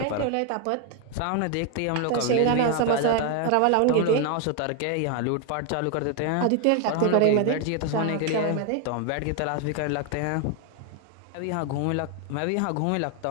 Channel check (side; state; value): both; different; correlation 0.01